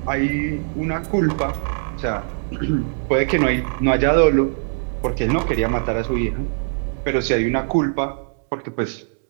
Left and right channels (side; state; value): left; silent; 65 dB below the other